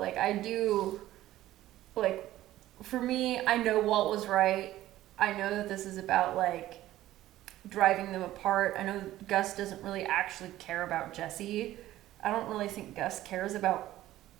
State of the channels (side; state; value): left; quieter; 14.7 dB